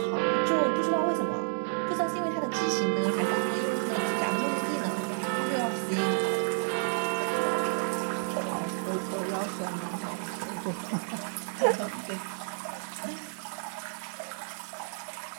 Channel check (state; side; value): silent; left; 58 dB below the other